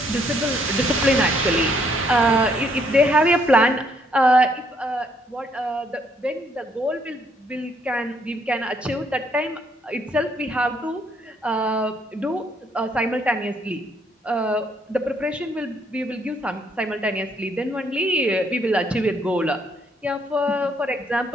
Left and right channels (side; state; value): both; normal; correlation 0.69